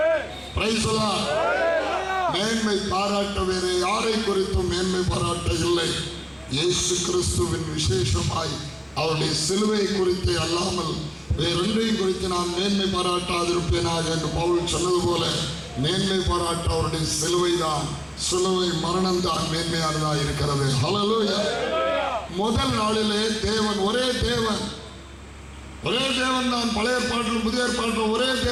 Praise the Lord. மேன்மை பாராட்ட வேறு யாரை குறித்தும் மேன்மை பாராட்ட இல்லை. இயேசு கிறிஸ்துவின் விசேஷமாய் அவருடைய சிலுவை குறித்து அல்லாமல் வேறொன்றையும் குறித்து நான் மேன்மை பாராட்டாதிருப்பேனாக என்று பவுல் சொன்னது போல மேன்மை பாராட்ட அவருடைய சிலுவை தான், சிலுவை மரணம் தான் மேன்மையானதாக இருக்கிறது. ஹல்லேலூயா. முதல் நாளிலே தேவன் ஒரே தேவன் தான். பழைய ஏற்பாட்டிலும் புதிய ஏற்பாட்டிலும் ஒரே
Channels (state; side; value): identical; both; correlation 1.00